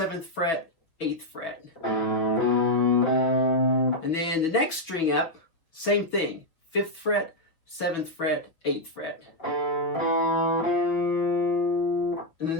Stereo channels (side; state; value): right; late; 6.2 ms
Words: fret, 8th fret. And then the next string up, same thing, 5th fret, 7th fret, 8th fret. And then